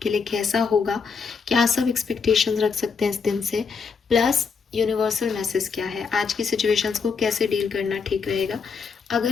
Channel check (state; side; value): quieter; right; 5.5 dB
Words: लिए कैसा होगा, क्या सब एक्सपेक्टेशंस रख सकते हैं इस दिन से, प्लस यूनिवर्सल मैसेज क्या है, आज की सिचुएशंस को कैसे डील करना ठीक रहेगा। अगर